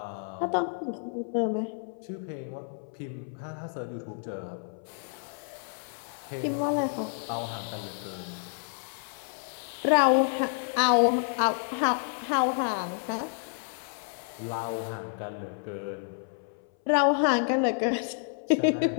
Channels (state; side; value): silent; right; 58 dB below the other